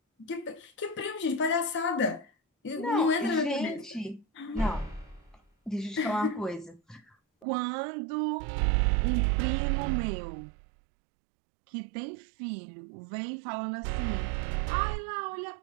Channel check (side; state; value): left; drops out; at 7.5 s